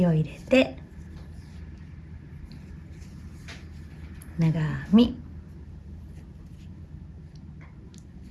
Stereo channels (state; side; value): identical; both; correlation 1.00